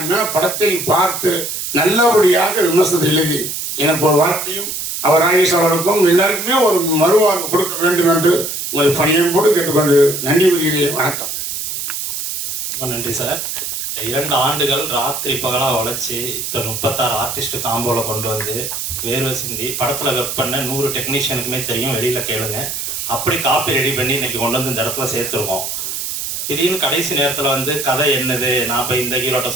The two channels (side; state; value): right; noise; hiss, 4 dB below the sound